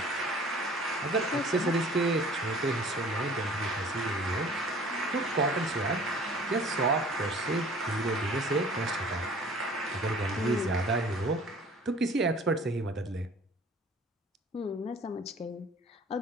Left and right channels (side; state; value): both; normal; correlation 0.48